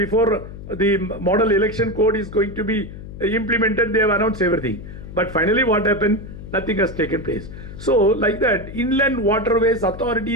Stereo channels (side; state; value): left; noise; hum, 12 dB below the sound